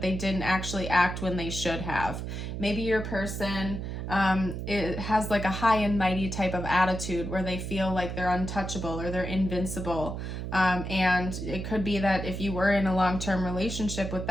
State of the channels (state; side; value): noise; right; hum, 5 dB below the sound